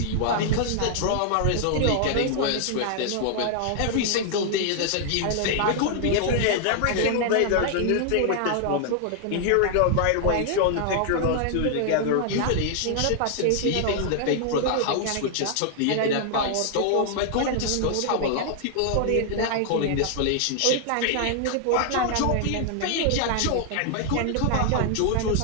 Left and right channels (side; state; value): both; different; correlation 0.00